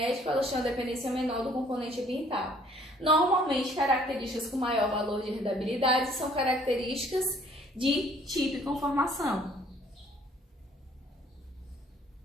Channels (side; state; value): both; normal; correlation 0.59